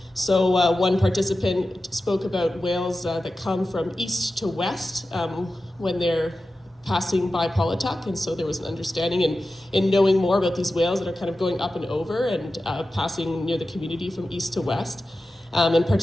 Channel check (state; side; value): normal; both; correlation 0.93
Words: So one participant spoke about whales that come from east to west when they're passing by Paulatuk, and so there was an understanding in knowing more about these whales that are kind of going up and over and passing near the community from east to west. And